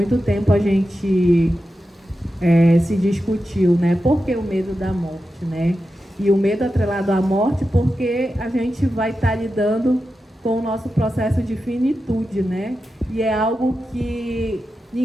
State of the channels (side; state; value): both; normal; correlation 0.91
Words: tempo a gente se discutiu, né, por que o medo da morte, né? E o medo atrelado à morte porque a gente vai estar lidando com o nosso processo de finitude, né? E é algo que